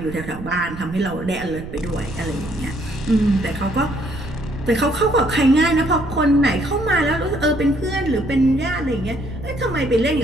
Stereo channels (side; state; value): right; noise; rumble, 12 dB below the sound